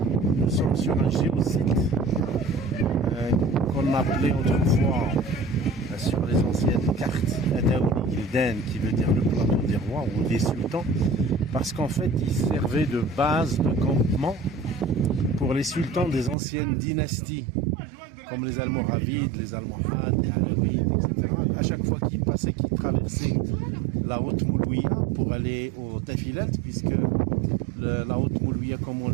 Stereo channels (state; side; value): drops out; left; at 16.4 s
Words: un géosite qu'on appelait autrefois sur les anciennes cartes Adaouli Gildan, qui veut dire le plateau des rois ou des sultans, parce qu'en fait il servait de base de campement pour les sultans des anciennes dynasties, comme les Almoravides, les Almohades, les Alaouides, etc. À chaque fois qu'ils passaient, qu'ils traversaient la haute Moulouia pour aller au Tafilat, puisque la haute Moulouia, comme on